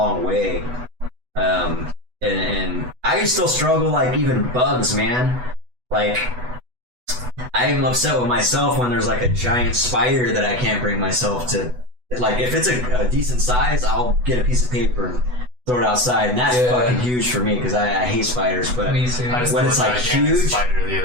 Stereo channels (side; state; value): left; late; 8.1 ms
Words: way. And I still struggle, like, even bugs, man. Like, I'm upset with myself when there's, like, a giant spider that I can't bring myself to. Like, if it's a decent size, I'll get a piece of paper and throw it outside, and that's fucking huge for me, because I hate spiders. But Me too. when it's, like, huge... Spider the